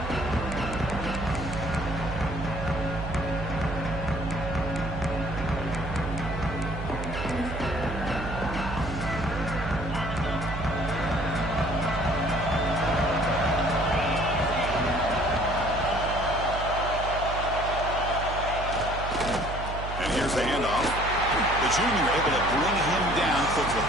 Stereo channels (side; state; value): right; noise; hum, 6 dB below the sound